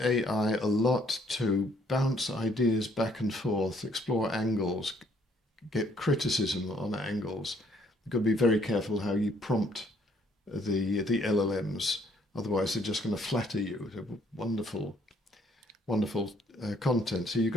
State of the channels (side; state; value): both; normal; correlation 0.65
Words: a lot to bounce ideas back and forth, explore angles, get criticism on angles. You've got to be very careful how you prompt the LLMs, otherwise they're just going to flatter you. They're wonderful wonderful content. So you've